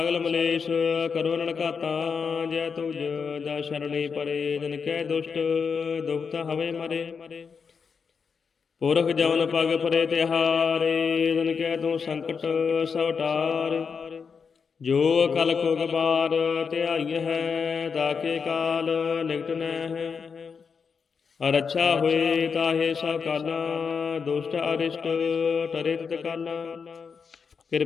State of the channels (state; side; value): quieter; right; 5.8 dB